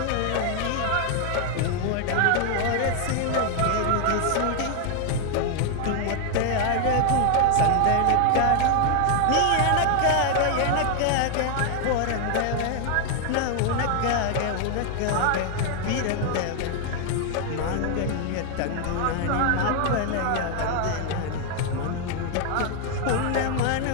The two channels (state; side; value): different; both; correlation 0.00